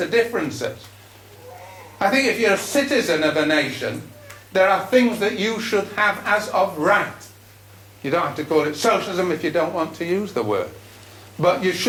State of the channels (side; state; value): both; identical; correlation 1.00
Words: differences. I think if you're a citizen of a nation, there are things that you should have as of right. You don't have to call it socialism if you don't want to use the word. But you